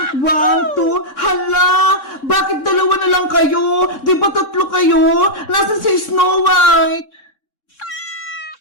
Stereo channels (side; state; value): right; late; 3.6 ms